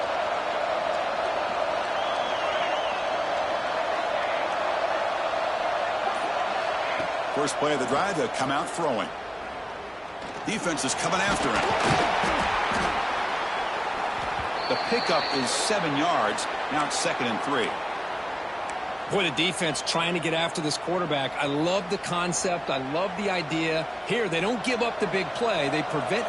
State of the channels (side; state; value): both; identical; correlation 1.00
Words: First play of the drive, they'll come out throwing. Defense is coming after him. The pickup is 7 yards. Now it's 2nd and 3. Boy, the defense trying to get after this quarterback. I love the concept. I love the idea. Here, they don't give up the big play. They prevent